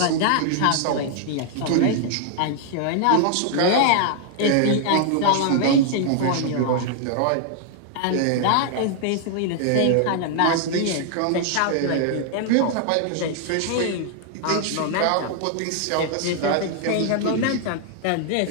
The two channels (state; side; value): different; both; correlation 0.00